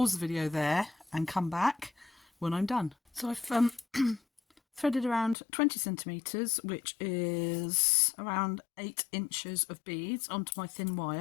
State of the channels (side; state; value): right; drops out; at 5.4 s